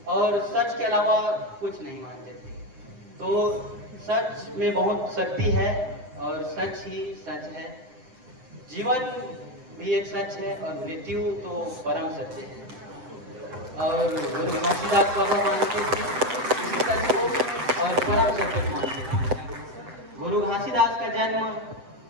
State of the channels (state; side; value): late; left; 7.6 ms